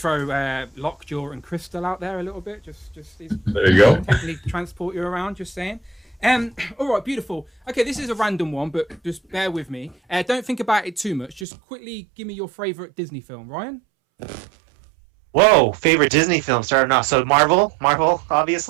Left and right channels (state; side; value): drops out; left; at 11.5 s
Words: Lockjaw and Crystal out there a little bit, just there you go. Technically transport you around, just saying. All right, beautiful. Okay, this is a random one, but just bear with me. Don't think about it too much. Just quickly give me your favorite Disney film, Ryan. Whoa, favorite Disney film starting off. So Marvel,